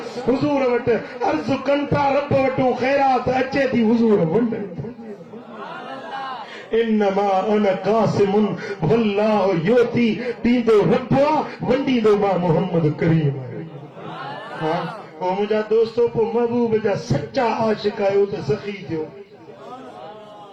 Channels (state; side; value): identical; both; correlation 1.00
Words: हुज़ूर वटि अर्ज़ कनि था, रब वटूं ख़ैरात अचे थी, हुज़ूर वंडनि था। इन्नमा अना कासिमुन वल्लाहु युती, ॾींदो रब आहे, वंडींदो मां मोहम्मद करीम। पोइ मुंहिंजा दोस्तो, पोइ महबूब जा सच्चा आशिक आहियो त सखी थियो,